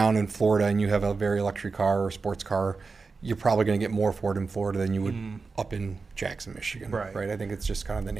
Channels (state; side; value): quieter; left; 4.4 dB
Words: in Florida and you have a very luxury car or sports car, you're probably going to get more for it in Florida than you would up in Jackson, Michigan. Right. I think it's just kind of the